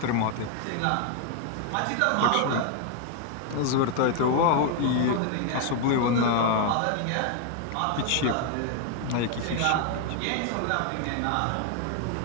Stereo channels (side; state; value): both; different; correlation 0.00